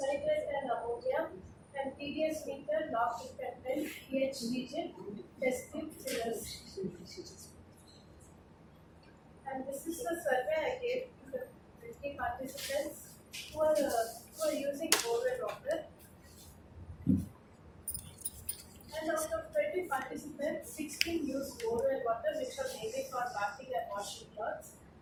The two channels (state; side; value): identical; both; correlation 1.00